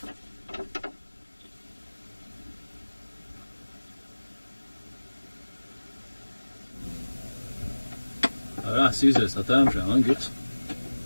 Ja, Caesar staat daar zo, hè, goed.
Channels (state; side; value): inverted; both; correlation -1.00